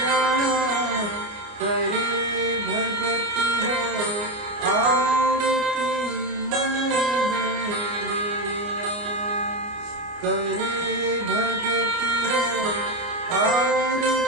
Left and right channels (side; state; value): left; late; 29 ms